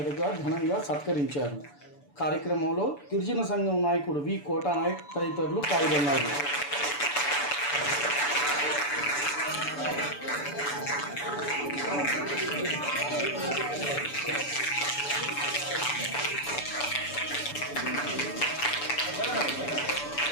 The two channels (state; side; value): late; right; 6.9 ms